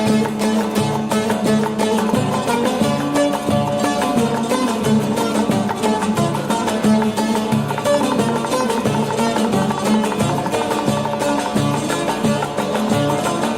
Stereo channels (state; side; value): identical; both; correlation 1.00